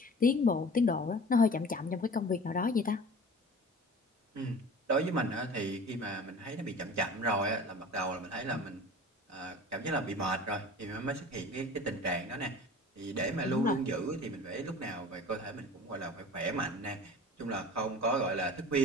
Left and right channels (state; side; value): normal; both; correlation 0.41